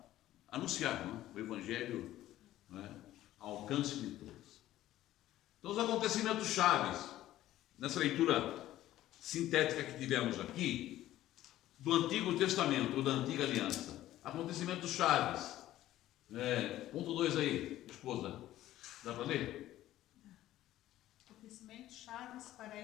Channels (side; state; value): right; quieter; 14.2 dB